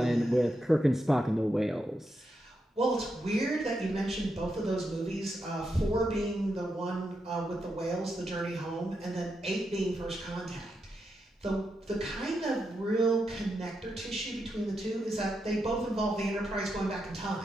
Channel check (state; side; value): normal; both; correlation 0.84